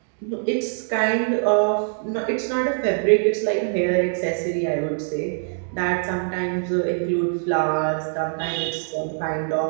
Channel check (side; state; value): left; silent; digital silence